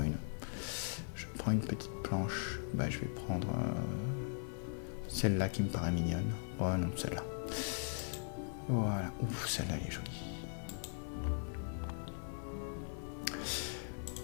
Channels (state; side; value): silent; right; 51 dB below the other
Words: Je prends une petite planche. Je vais prendre celle-là qui me paraît mignonne. Oh non, celle-là. Voilà. Ouf, celle-là elle est jolie.